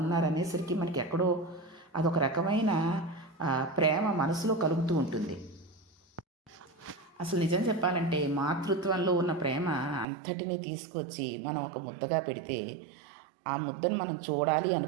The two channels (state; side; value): drops out; left; at 10.1 s